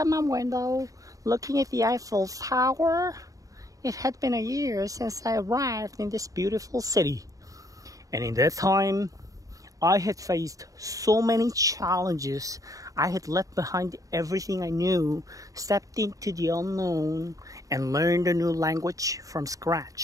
my window, looking at the Eiffel Tower. It had been a year since I arrived in this beautiful city. And in that time, I had faced so many challenges. I had left behind everything I knew, stepped into the unknown, and learned a new language from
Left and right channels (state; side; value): late; left; 0.16 ms